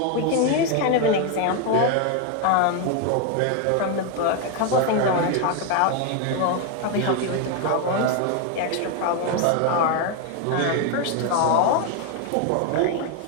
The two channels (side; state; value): both; different; correlation 0.01